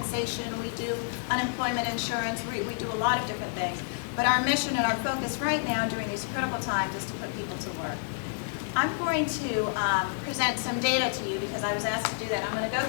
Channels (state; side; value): silent; right; 58 dB below the other